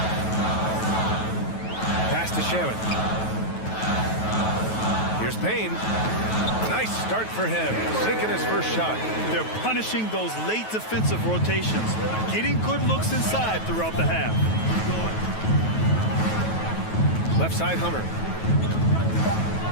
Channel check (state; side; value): late; right; 9.3 ms